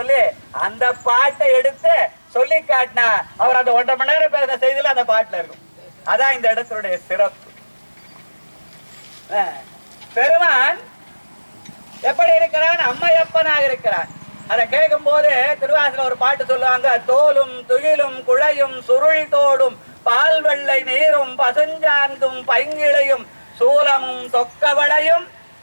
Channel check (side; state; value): both; inverted; correlation -1.00